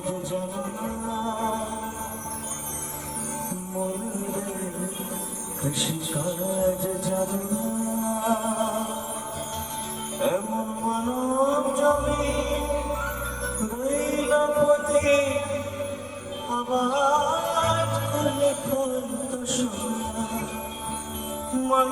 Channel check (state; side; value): noise; left; rumble, 22 dB below the sound